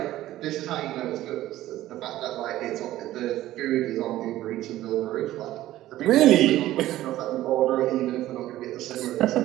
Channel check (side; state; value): left; quieter; 14.8 dB